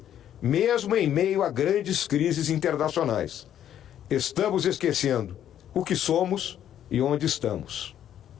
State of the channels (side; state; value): right; quieter; 10.5 dB